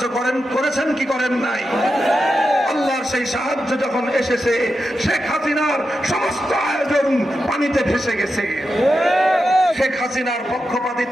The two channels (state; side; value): normal; both; correlation 0.89